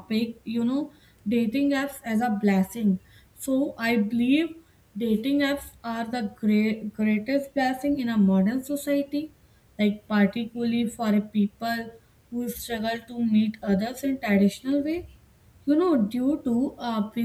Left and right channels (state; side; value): identical; both; correlation 1.00